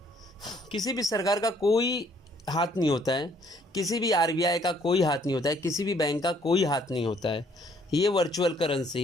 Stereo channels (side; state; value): both; normal; correlation 0.64